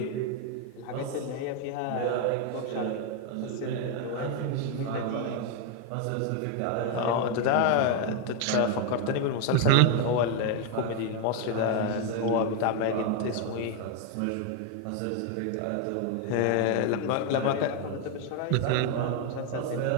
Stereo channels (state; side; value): different; both; correlation 0.01